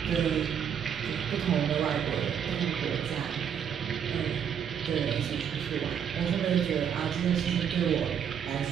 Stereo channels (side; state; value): left; quieter; 8.2 dB